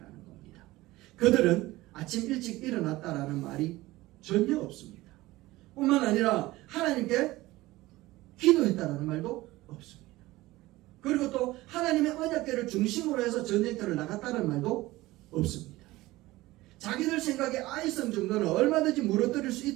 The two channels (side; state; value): left; quieter; 18.6 dB